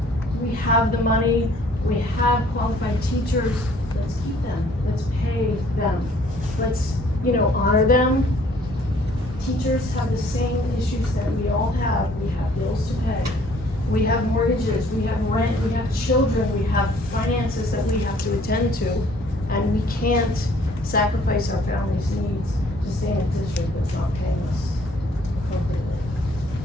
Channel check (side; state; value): both; normal; correlation 0.59